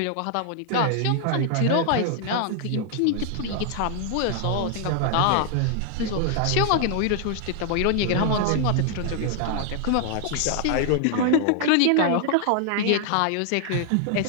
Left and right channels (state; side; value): different; both; correlation 0.00